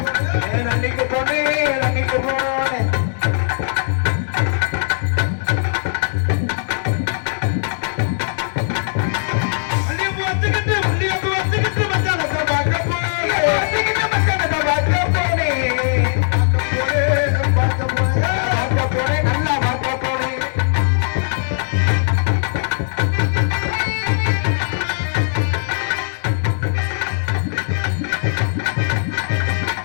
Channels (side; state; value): right; silent; digital silence